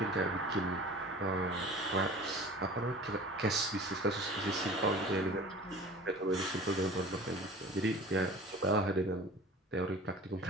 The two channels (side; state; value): both; normal; correlation 0.41